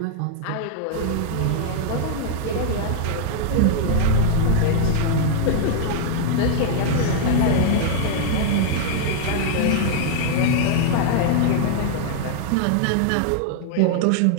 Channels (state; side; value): different; both; correlation 0.00